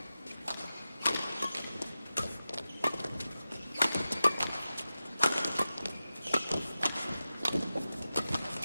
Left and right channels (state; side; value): inverted; both; correlation -0.93